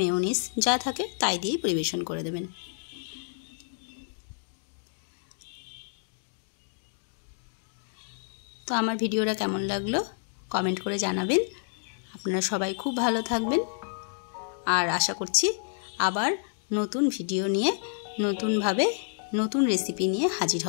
মেয়োনিজ যা থাকে তাই দিয়েই পরিবেশন করে দেবেন। তো আমার ভিডিওটা কেমন লাগলো কমেন্ট করে জানাবেন। আপনারা সবাই খুব ভালো থাকবেন, আর আশা করছি আবার নতুন ভিডিও নিয়ে, নতুনভাবে নতুন রেসিপি নিয়ে হাজির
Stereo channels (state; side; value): silent; right; digital silence